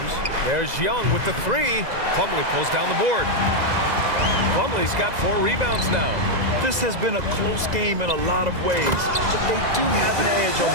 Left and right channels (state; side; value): late; left; 2.0 ms